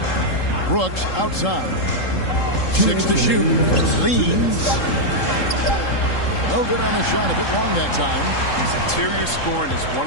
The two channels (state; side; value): late; right; 3.7 ms